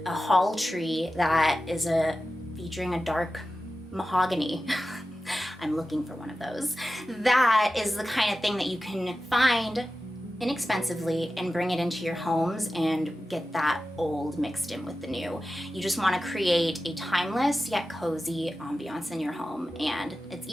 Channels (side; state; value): both; normal; correlation 0.93